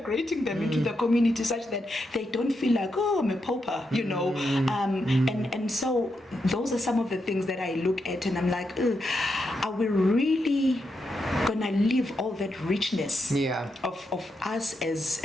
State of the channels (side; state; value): both; normal; correlation 0.83